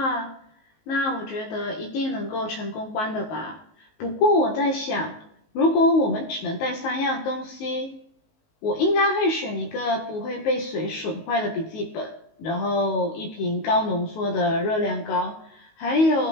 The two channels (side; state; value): right; late; 19 ms